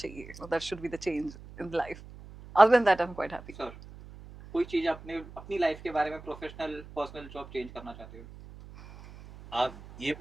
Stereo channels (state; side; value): noise; right; hum, 17 dB below the sound